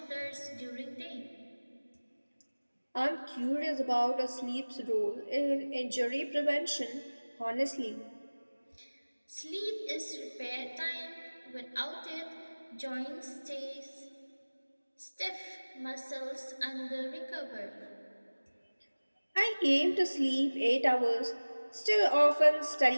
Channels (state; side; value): inverted; both; correlation -1.00